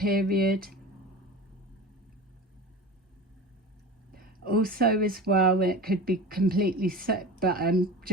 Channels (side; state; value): both; normal; correlation 0.32